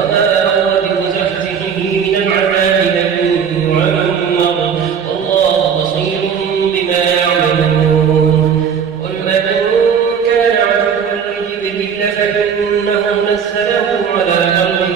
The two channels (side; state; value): left; quieter; 7.2 dB